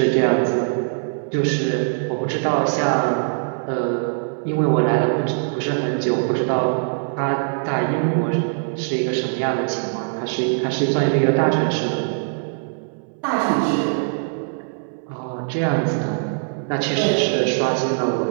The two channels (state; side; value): silent; left; 64 dB below the other